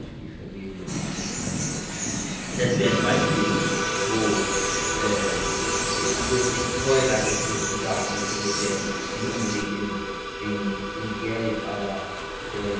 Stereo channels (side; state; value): both; identical; correlation 1.00